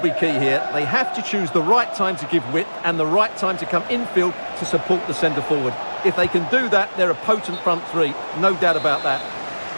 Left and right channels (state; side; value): inverted; both; correlation -1.00